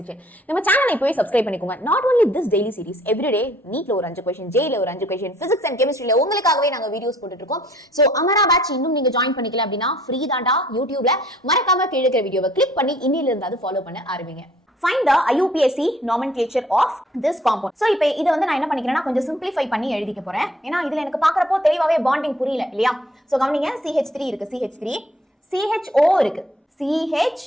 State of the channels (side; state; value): both; normal; correlation 0.59